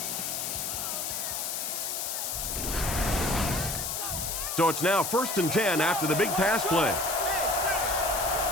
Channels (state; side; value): noise; left; hiss, 2 dB below the sound